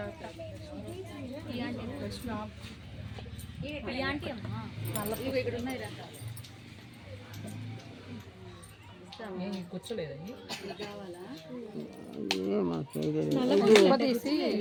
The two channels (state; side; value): identical; both; correlation 1.00